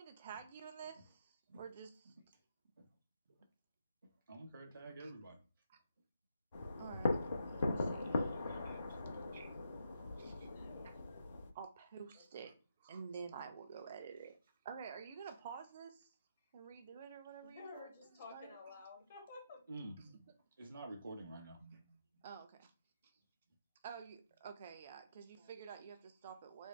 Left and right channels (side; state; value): both; inverted; correlation -0.80